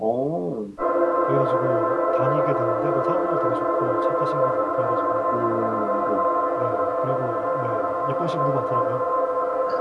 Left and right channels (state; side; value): identical; both; correlation 1.00